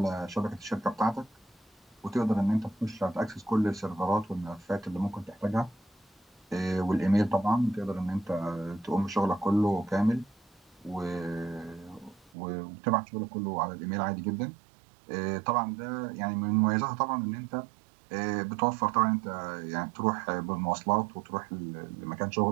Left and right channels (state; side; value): drops out; left; at 12.3 s